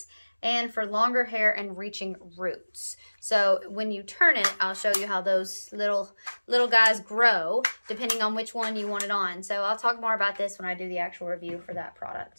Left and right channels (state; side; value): inverted; both; correlation -1.00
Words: and for longer hair and reaching roots. So when you turn it, I'll show you how those little guys grow depending on which one you want it on. So I'll talk more about this when I do the actual review for that